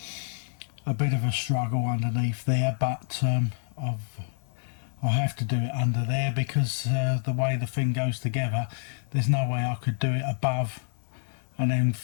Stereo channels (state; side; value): silent; right; digital silence